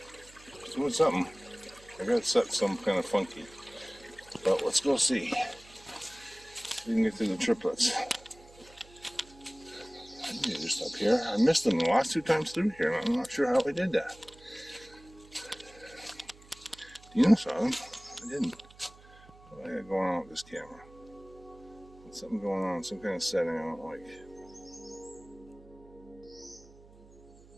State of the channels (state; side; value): noise; right; hum, 23 dB below the sound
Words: It's doing something. I got it set some kind of funky. But let's go see. See if we can get to the triplets. I need to just up here. I missed them the last 2 times through here, and I'm not sure how I did that. Dina saw them. I didn't. What do I got going on with this camera? There's something going on, some kind of setting I don't like.